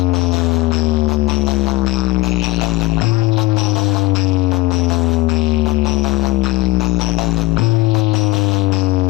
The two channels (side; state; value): right; quieter; 19.3 dB